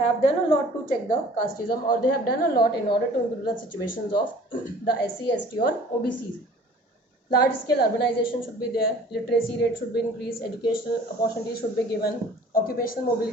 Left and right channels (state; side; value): normal; both; correlation 0.49